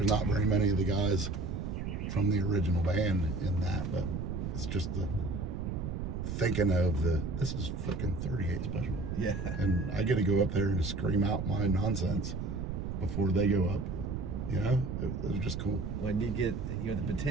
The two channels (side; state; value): right; noise; rumble, 4 dB below the sound